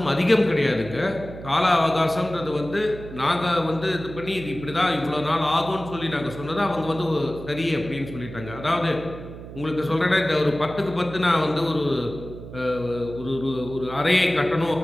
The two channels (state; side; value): noise; right; hum, 13 dB below the sound